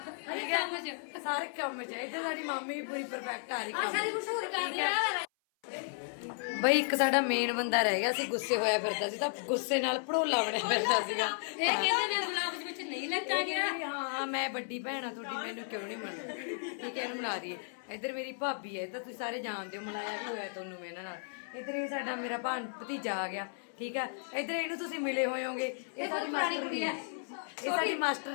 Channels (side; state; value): right; silent; 55 dB below the other